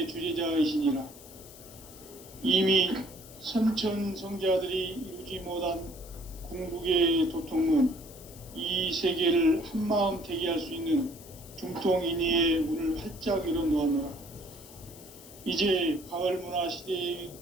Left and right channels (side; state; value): left; noise; hiss, 19 dB below the sound